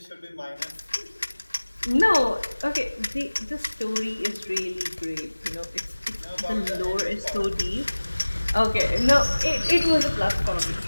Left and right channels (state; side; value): inverted; both; correlation -1.00